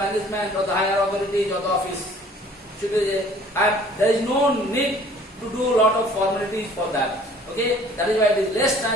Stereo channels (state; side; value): normal; both; correlation 0.53